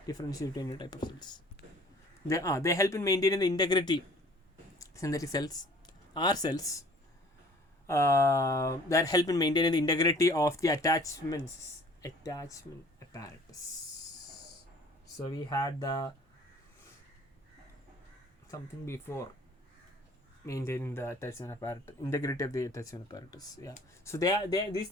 differentiate between any type of cells. They help in maintaining the integrity. Synthetic cells are cells that help in maintaining the integrity of the attachment apparatus. So we had the something before maintaining the attachment apparatus, integrity of the attachment apparatus. Yeah. So these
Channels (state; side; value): normal; both; correlation 0.51